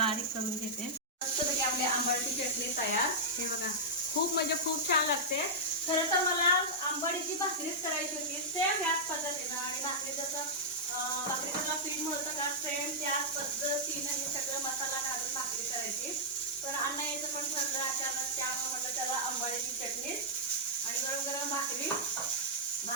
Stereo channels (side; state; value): both; normal; correlation -0.09